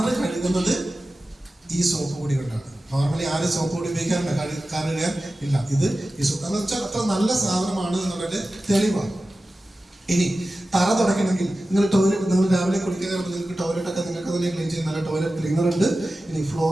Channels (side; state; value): both; normal; correlation 0.95